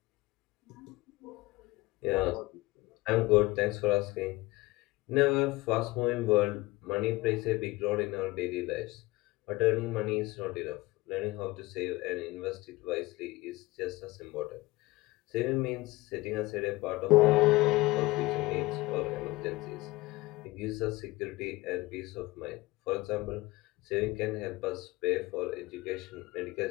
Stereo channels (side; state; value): right; quieter; 20.7 dB